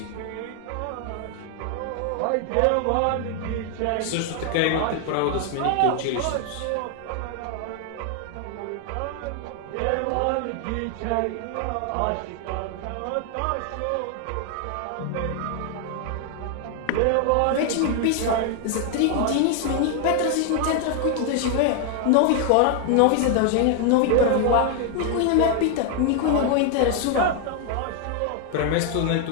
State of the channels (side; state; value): both; different; correlation 0.00